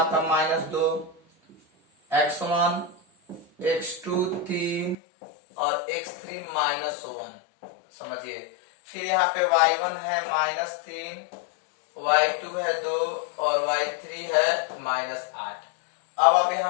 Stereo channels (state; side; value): drops out; right; at 5.0 s